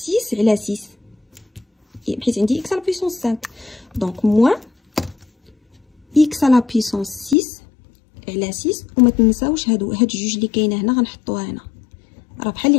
6 على 6 حيت عندي x على بيسونس 5. دونك موان x على بيسونس 6 على 6 وما تنساوش هاد جوج اللي كاينه هنا غنحطوها هنا راه بحال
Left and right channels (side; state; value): right; drops out; at 7.4 s